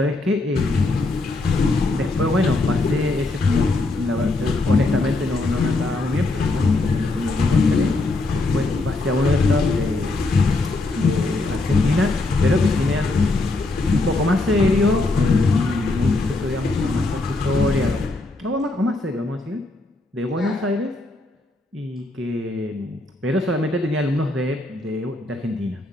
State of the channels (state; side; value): quieter; right; 3.0 dB